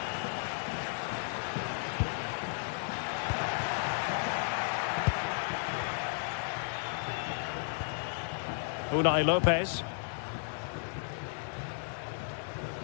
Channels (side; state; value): right; silent; 55 dB below the other